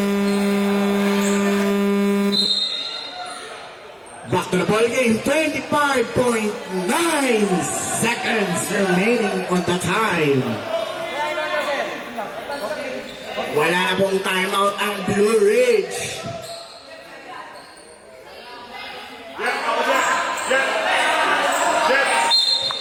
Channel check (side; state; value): both; identical; correlation 1.00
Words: Back to the ball game, 25.9 seconds remaining on the time. Wala na pong timeout ang Blue Ridge.